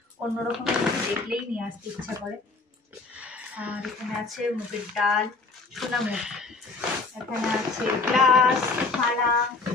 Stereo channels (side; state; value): right; quieter; 3.8 dB